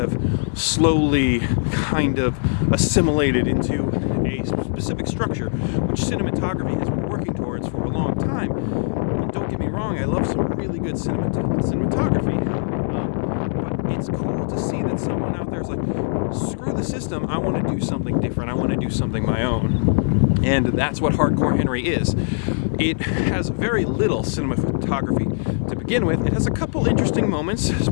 slowly kind of assimilated into a specific structure, which cinematography has been working towards for a long time. And don't get me wrong, I love some really good cinematography, but it's cool to see that someone out there is like, screw the system, I want to do something different, I want to do something my own. And that's what Hardcore Henry is. It has very little cinematography to begin with. It has a couple interesting moments,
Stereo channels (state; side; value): silent; right; digital silence